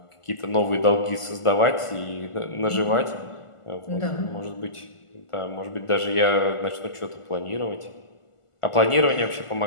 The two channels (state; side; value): late; right; 1.5 ms